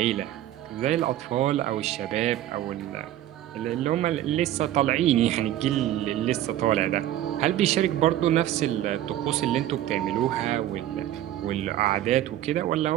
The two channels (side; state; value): left; quieter; 12.9 dB